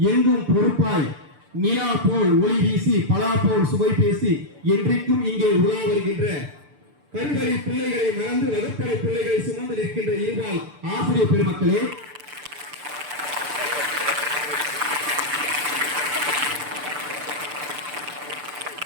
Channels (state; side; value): late; left; 6.8 ms